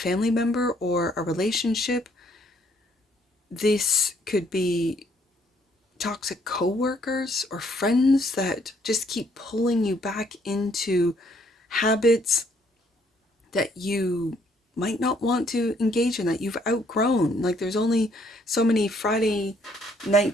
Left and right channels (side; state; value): both; normal; correlation 0.67